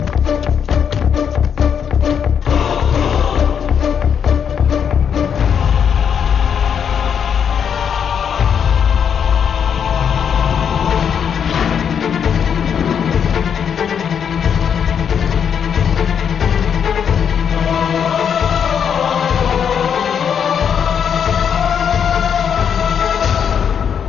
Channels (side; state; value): right; quieter; 7.7 dB